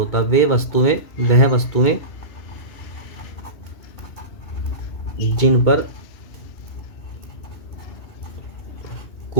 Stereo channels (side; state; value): right; late; 2.7 ms